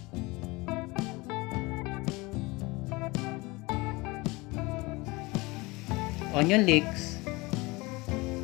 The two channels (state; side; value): quieter; right; 23.5 dB